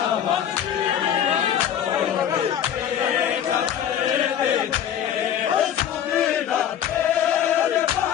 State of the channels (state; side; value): quieter; right; 9.7 dB